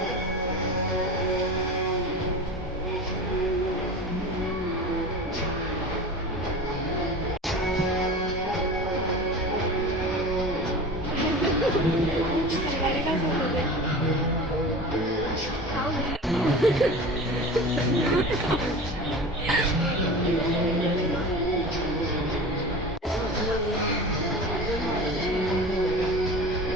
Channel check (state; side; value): normal; both; correlation 0.33